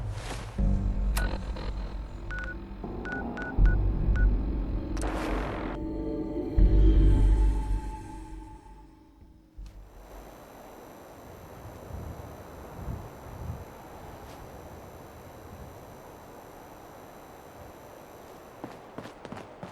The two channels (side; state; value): both; identical; correlation 1.00